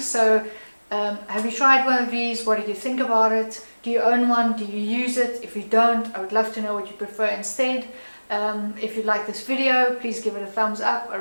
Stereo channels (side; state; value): both; inverted; correlation -1.00